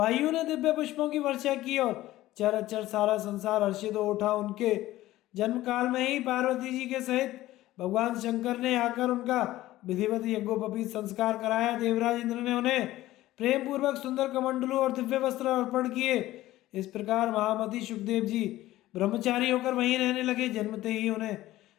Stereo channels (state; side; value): quieter; right; 15.8 dB